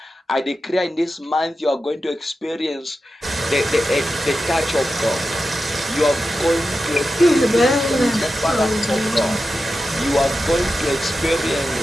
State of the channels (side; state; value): both; normal; correlation 0.91